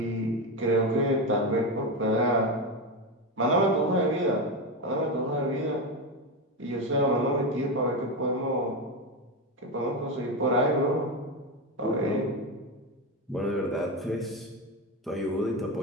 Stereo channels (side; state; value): both; normal; correlation 0.14